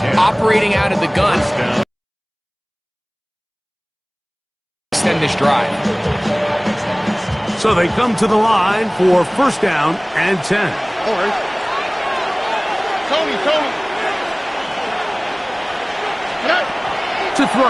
operating out of the gun. Extend this drive. So they come to the line for 1st down and 10. All right. Tony. To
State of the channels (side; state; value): both; identical; correlation 1.00